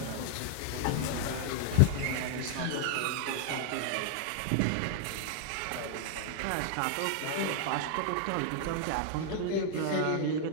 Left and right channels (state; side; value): different; both; correlation -0.01